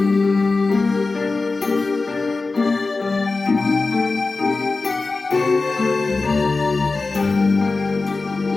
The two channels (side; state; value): right; quieter; 3.7 dB